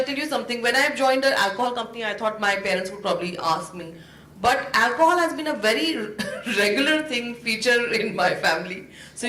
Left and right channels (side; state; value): both; identical; correlation 1.00